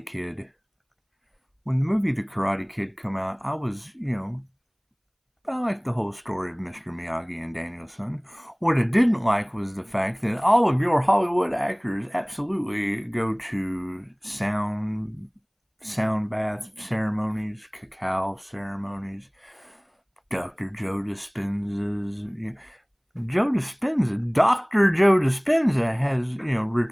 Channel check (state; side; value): identical; both; correlation 1.00